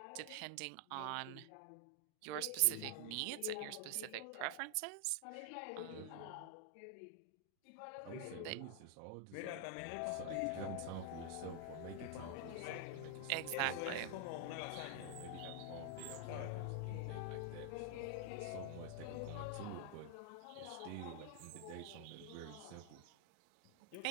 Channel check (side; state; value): both; different; correlation 0.00